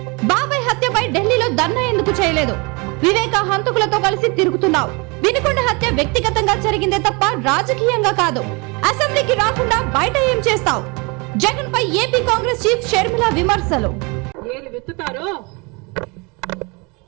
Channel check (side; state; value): left; quieter; 28.9 dB